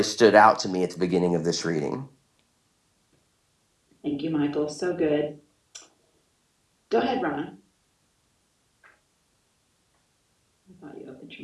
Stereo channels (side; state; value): both; identical; correlation 1.00